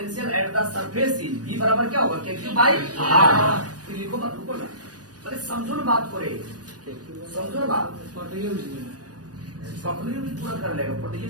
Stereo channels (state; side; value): late; left; 0.69 ms